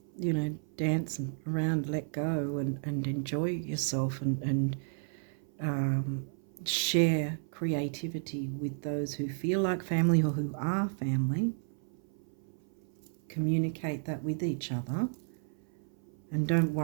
you know, dance around, let go and enjoy yourself and share creativity with those who feel like family or who are family. Communicate that with each other. And don't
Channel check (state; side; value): silent; left; 56 dB below the other